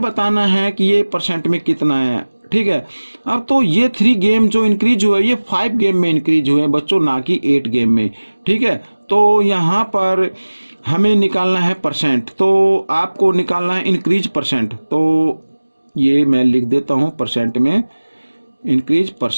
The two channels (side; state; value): both; inverted; correlation -1.00